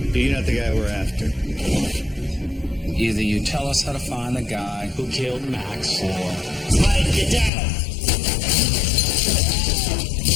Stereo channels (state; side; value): drops out; right; at 7.5 s